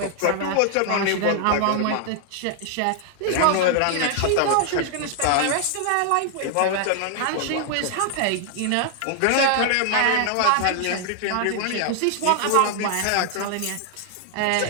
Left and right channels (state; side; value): different; both; correlation 0.00